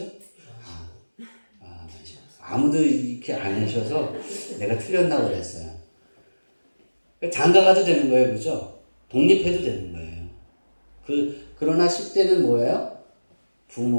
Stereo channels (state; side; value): inverted; both; correlation -1.00